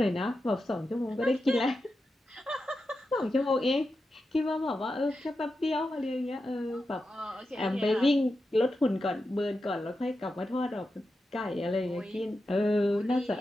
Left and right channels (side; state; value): both; normal; correlation 0.90